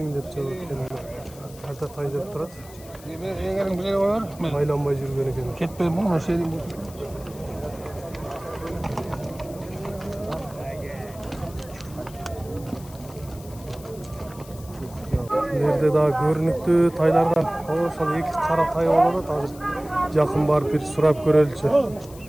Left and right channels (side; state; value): left; noise; hiss, 20 dB below the sound